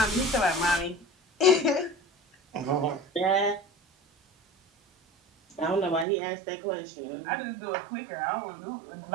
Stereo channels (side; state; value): left; drops out; at 6.1 s